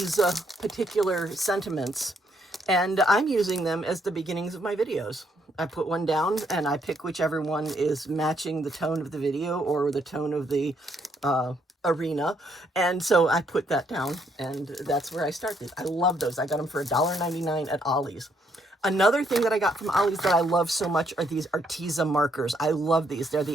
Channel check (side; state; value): both; normal; correlation 0.72